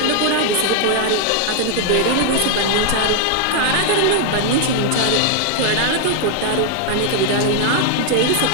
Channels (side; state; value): both; different; correlation 0.00